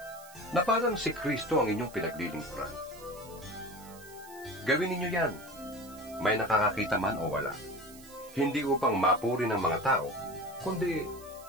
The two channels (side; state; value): right; noise; hiss, 20 dB below the sound